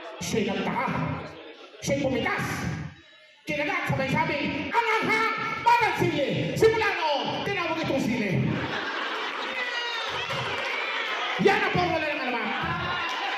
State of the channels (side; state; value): both; identical; correlation 1.00